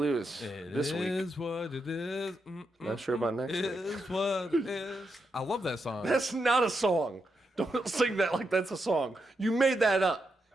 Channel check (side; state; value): both; normal; correlation 0.84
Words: this It week. is what it is. Not sure about next week. Is what it is. I love that song. That's not a song. Don't sing that like that's a song. You made that up.